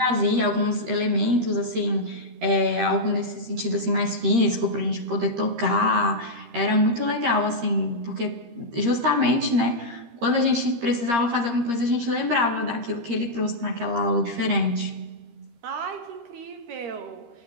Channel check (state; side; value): late; left; 13 ms